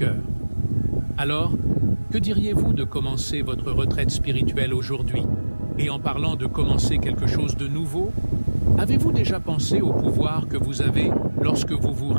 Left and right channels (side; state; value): both; inverted; correlation -1.00